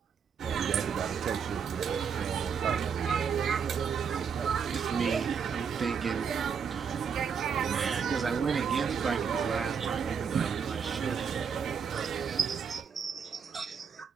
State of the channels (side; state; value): left; quieter; 6.6 dB